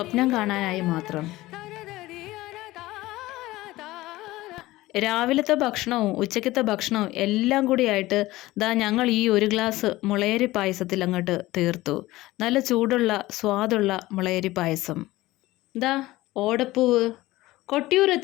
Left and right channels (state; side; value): quieter; right; 18.0 dB